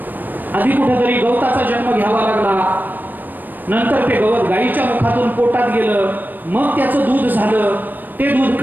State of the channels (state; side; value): late; left; 0.089 ms